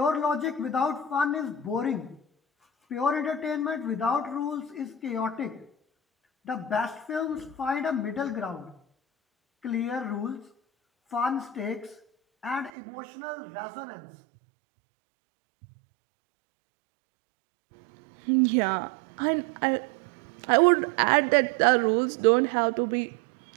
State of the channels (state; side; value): drops out; left; at 12.7 s